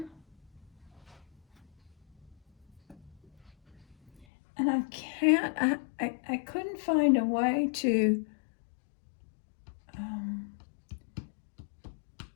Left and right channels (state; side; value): drops out; right; at 4.2 s